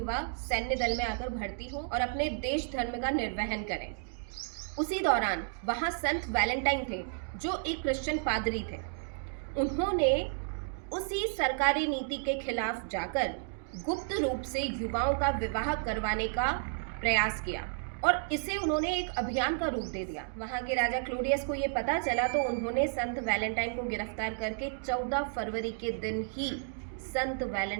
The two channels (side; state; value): left; silent; digital silence